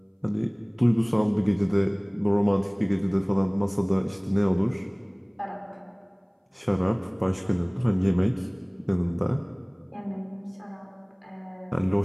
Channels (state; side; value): identical; both; correlation 1.00